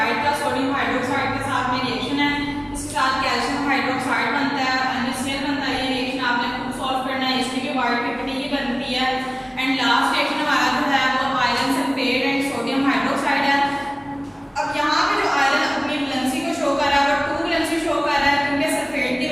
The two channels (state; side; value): identical; both; correlation 1.00